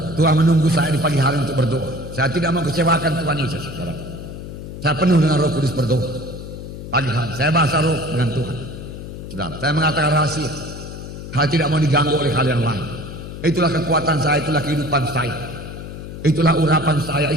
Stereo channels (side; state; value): left; noise; hum, 10 dB below the sound